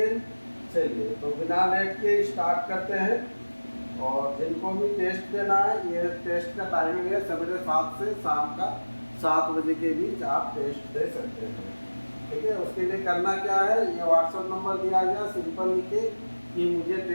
चलिए तो बिना लेट के स्टार्ट करते हैं। और जिनको भी टेस्ट देना है, ये टेस्ट का टाइमिंग है सवेरे 7 से शाम का 7 बजे के बीच आप टेस्ट दे सकते हैं। ठीक है, उसके लिए करना क्या है, ये व्हाट्सएप नंबर दिया गया, सिंपल लिखे कि मुझे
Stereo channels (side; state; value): both; inverted; correlation -1.00